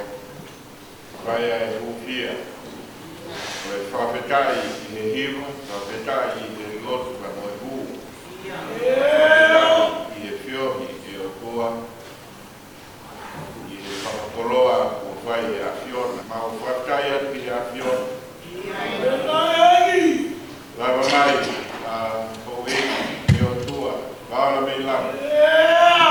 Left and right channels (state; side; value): identical; both; correlation 1.00